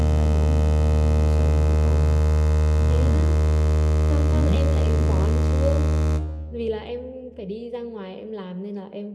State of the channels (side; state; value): both; identical; correlation 1.00